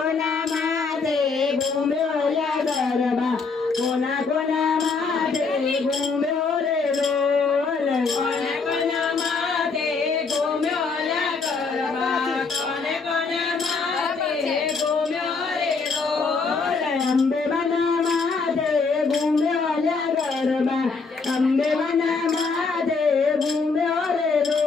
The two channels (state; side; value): quieter; right; 4.6 dB